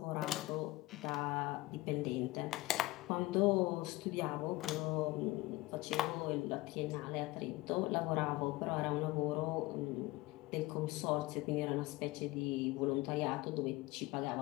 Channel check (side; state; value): right; quieter; 19.7 dB